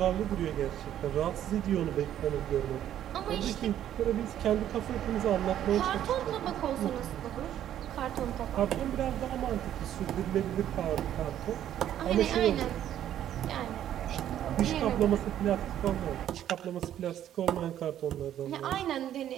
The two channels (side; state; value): left; quieter; 11.2 dB